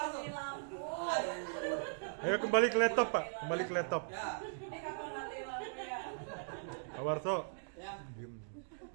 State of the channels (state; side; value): silent; left; digital silence